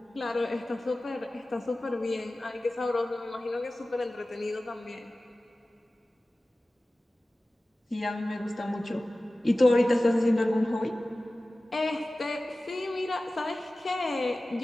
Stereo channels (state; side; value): normal; both; correlation 0.97